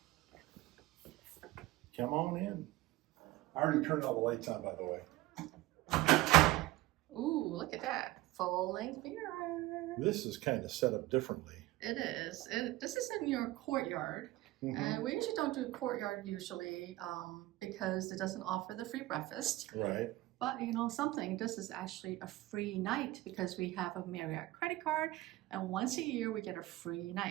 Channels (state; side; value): quieter; left; 18.0 dB